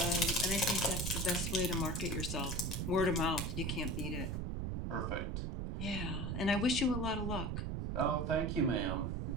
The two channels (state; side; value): noise; right; rumble, 2 dB below the sound